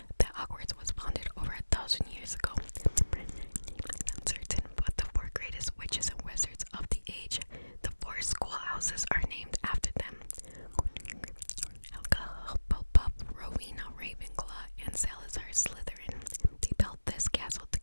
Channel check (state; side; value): inverted; both; correlation -1.00